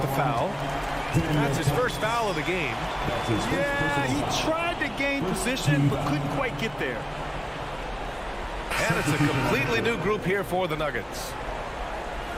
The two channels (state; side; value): identical; both; correlation 1.00